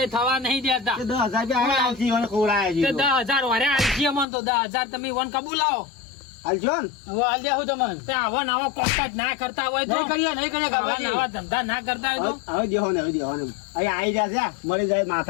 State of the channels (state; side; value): drops out; right; at 4.2 s